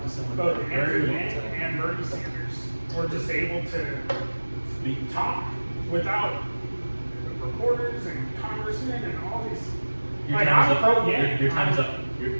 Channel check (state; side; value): inverted; both; correlation -1.00